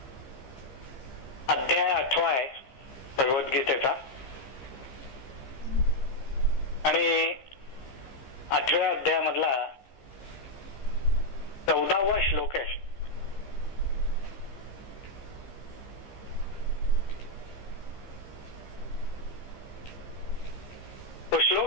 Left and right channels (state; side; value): late; right; 15 ms